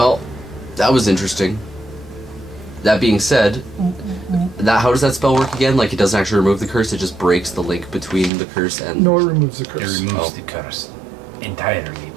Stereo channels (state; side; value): drops out; left; at 8.3 s